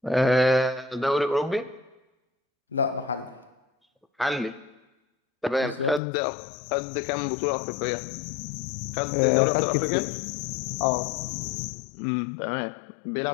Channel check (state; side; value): drops out; right; at 6.0 s